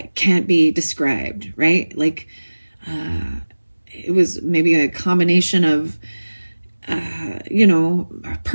can't be described, right? Like, it was maybe a combination of, you know,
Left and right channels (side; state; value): both; inverted; correlation -1.00